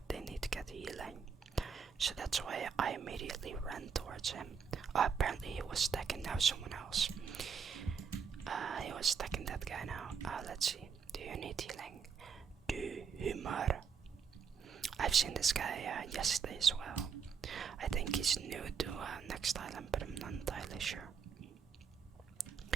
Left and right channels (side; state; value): left; quieter; 6.4 dB